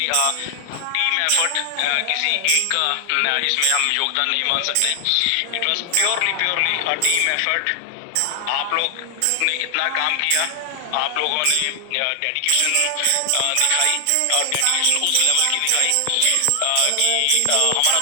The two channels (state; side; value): different; both; correlation 0.00